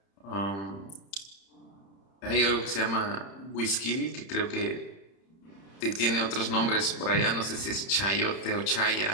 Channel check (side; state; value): right; late; 31 ms